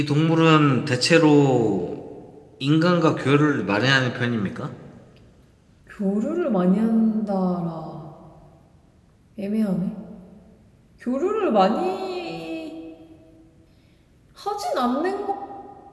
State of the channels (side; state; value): both; identical; correlation 1.00